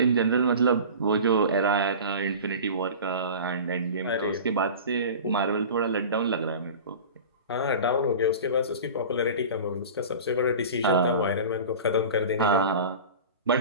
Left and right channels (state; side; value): inverted; both; correlation -0.36